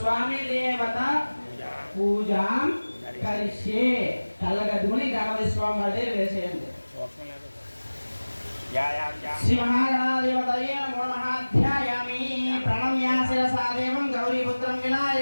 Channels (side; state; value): both; inverted; correlation -1.00